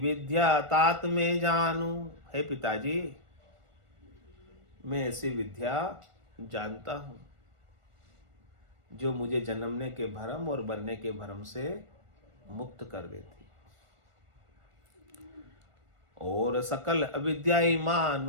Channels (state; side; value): late; left; 1.4 ms